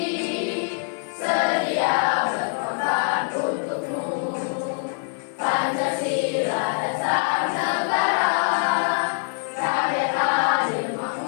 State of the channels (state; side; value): silent; right; 63 dB below the other